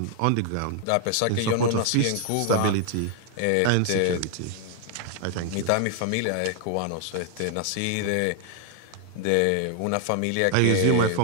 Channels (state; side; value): different; both; correlation 0.00